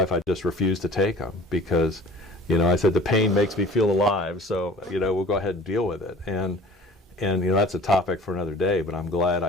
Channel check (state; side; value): normal; both; correlation 0.46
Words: I just refused to take them, because, you know, I said the pain makes me feel alive, so, you know, we'll go ahead and deal with it. And you know, that's a topic for another day, but I'm glad